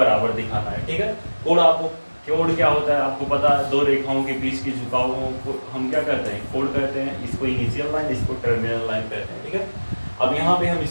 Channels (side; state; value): both; inverted; correlation -1.00